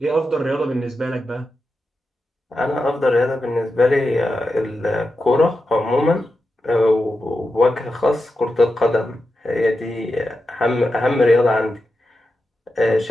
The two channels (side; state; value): both; normal; correlation 0.90